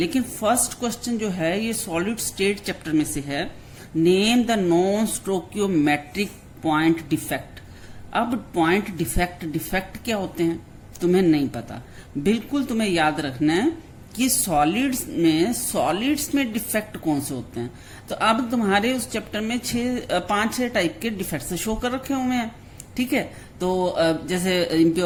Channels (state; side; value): identical; both; correlation 1.00